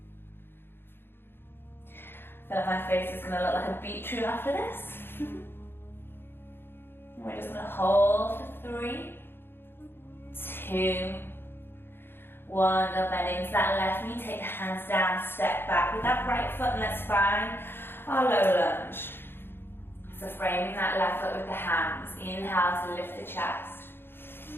I feel like my face is going to look like a beetroot after this. We're just going to hold for 3, 2, 1. Go bend into that left knee. Take the hands down. Step back with that right foot, and let's find our low lunge. So framing that left foot with the hands. Inhale to lift the chest.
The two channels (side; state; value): right; late; 0.10 ms